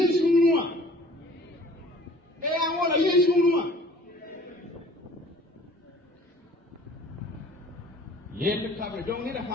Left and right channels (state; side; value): normal; both; correlation 0.51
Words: ou moi. Et voilà, yes ou moi. Le table, donc il a